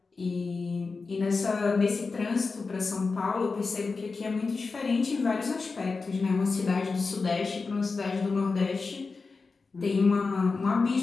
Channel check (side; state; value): right; quieter; 4.3 dB